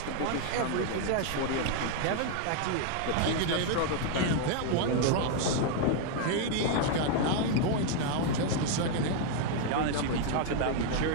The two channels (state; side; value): different; both; correlation 0.00